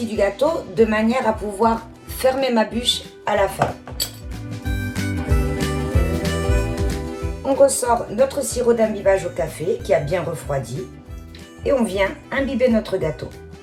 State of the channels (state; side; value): identical; both; correlation 1.00